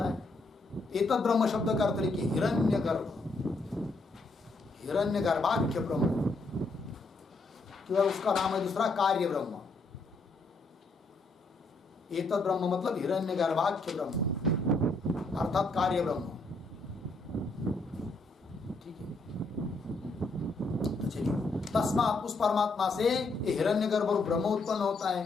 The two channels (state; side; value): quieter; right; 3.2 dB